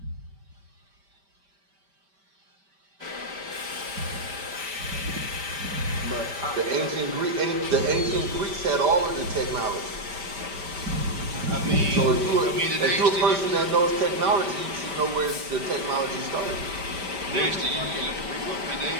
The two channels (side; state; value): left; late; 5.1 ms